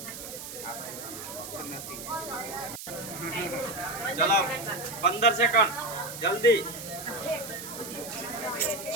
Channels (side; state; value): right; noise; hiss, 10 dB below the sound